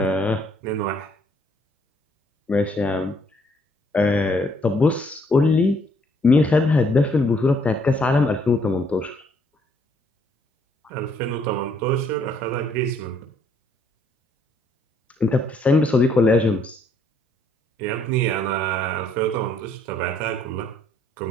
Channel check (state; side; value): normal; both; correlation 0.67